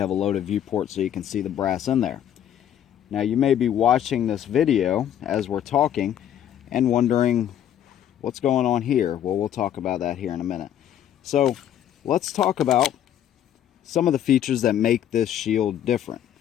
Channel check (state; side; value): quieter; right; 10.4 dB